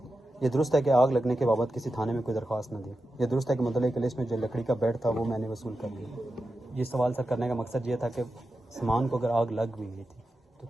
یہ درست ہے کہ آگ لگنے کے بابت کسی تھانے میں کوئی درخواست نہ دی۔ یہ درست ہے کہ مدعی کی لسٹ میں جو لکڑی کا بیڈ تھا وہ میں نے وصول کر لیا۔ یہ سوال سر کرنے کا مقصد یہ تھا کہ سامان کو اگر آگ لگ بھی گئی تھی تو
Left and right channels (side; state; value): both; normal; correlation 0.91